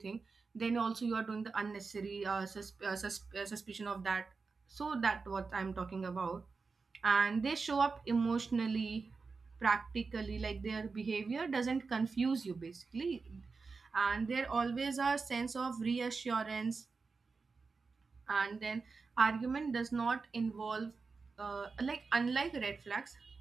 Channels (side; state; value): left; quieter; 4.5 dB